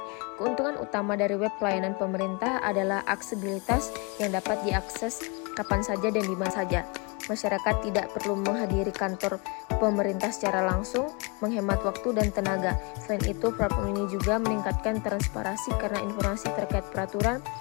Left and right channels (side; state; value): right; quieter; 30.5 dB